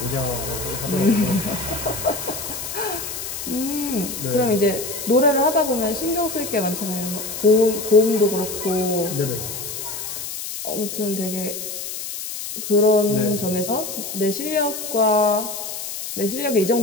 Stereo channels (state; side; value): noise; left; hiss, 7 dB below the sound